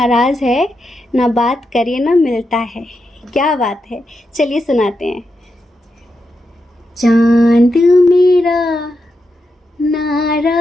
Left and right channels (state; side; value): normal; both; correlation 0.86